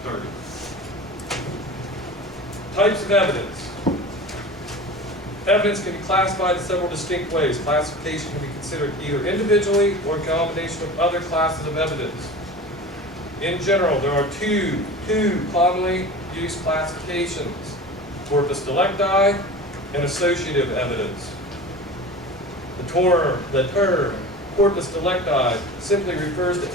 30. Types of evidence. Evidence can be classified in several distinct ways. Classification can be considered either individually or in combination with other classes of evidence. In general, there are two commonly used classifications: corpus delicti and associative evidence. The term corpus delicti simply refers to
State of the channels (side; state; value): both; normal; correlation 0.35